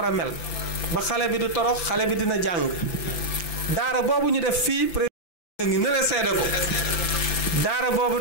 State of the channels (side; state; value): right; late; 5.9 ms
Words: a mel ba xale bi du torox xale bi dina jàng daara boobu ñu def fii président ngi nële seede ko daara boobu